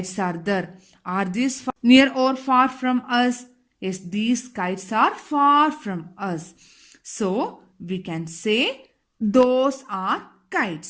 are there. Are these near or far from us? Yes, these kites are far from us. So, we can say those are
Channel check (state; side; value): identical; both; correlation 1.00